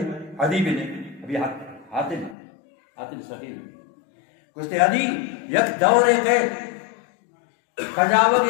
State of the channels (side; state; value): right; drops out; at 2.4 s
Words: عدی بن ابھی حاتم سخیر کچھ عدی یک دور قید کجاوہ